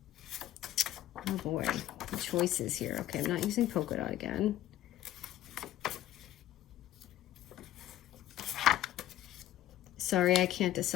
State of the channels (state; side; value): quieter; right; 13.8 dB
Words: Oh boy, the choices here. Okay, I'm not using polka dot again. Sorry, I can't